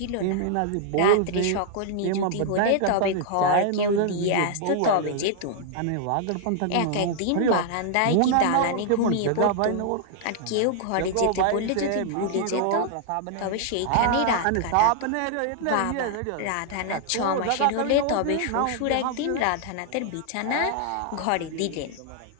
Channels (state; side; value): different; both; correlation 0.00